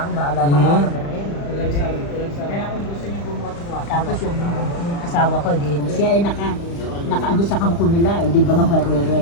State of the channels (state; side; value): late; right; 35 ms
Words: akin, bahala na ako na rin. Kaya kung gusto niyo bumuha, tapos yung asawa ko, siya ay nakaano sa kampo nila, di ba nga barera